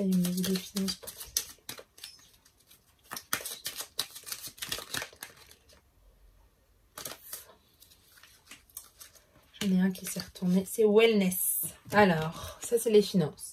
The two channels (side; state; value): both; identical; correlation 1.00